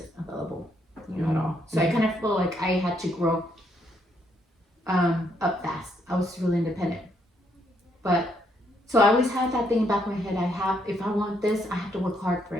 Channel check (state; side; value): normal; both; correlation 0.73